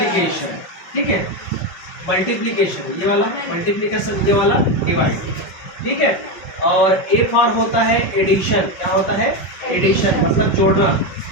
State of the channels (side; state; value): right; late; 5.4 ms